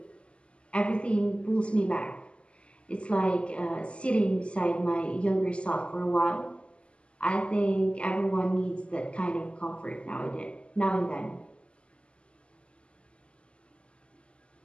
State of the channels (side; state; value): right; late; 0.054 ms